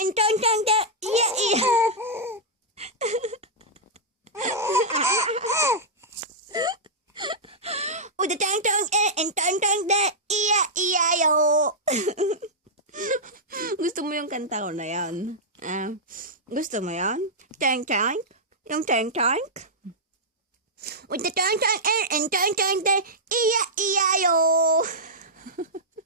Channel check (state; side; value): normal; both; correlation -0.09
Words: and tang tang de. E-I-E-I-O. With the tang tang air and tang tang de. E-I-E-I-O. Gusto mo yung kanta ko na yan? Gusto mo yan? Tang tang? Yung tang tang? With the tang tang air and tang tang de. E-I-E-I-O.